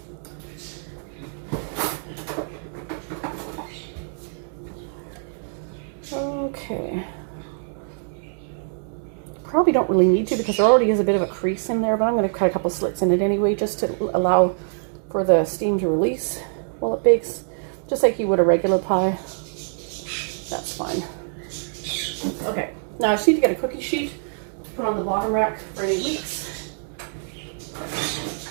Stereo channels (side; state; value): left; silent; digital silence